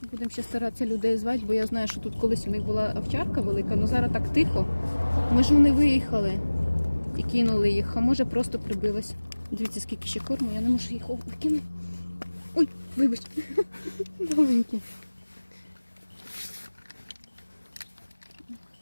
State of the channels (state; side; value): inverted; both; correlation -1.00